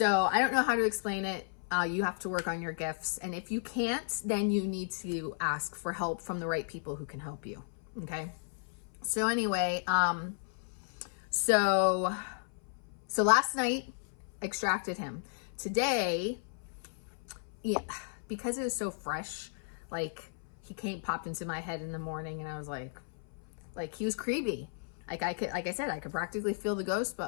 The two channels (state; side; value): silent; right; 55 dB below the other